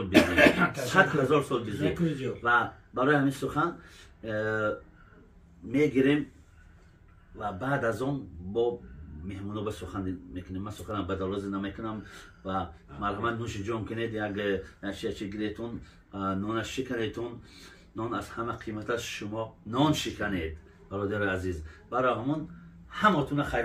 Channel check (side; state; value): both; identical; correlation 1.00